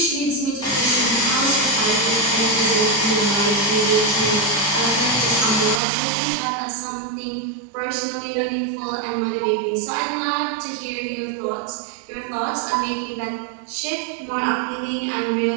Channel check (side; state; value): left; drops out; at 5.8 s